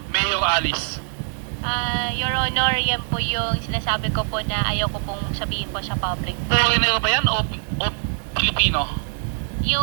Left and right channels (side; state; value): left; silent; digital silence